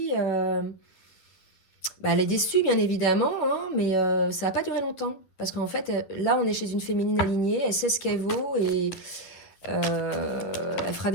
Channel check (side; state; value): right; late; 11 ms